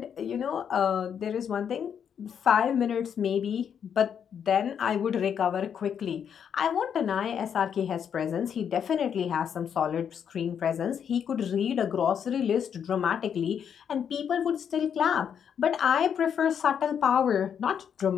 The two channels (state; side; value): quieter; right; 8.0 dB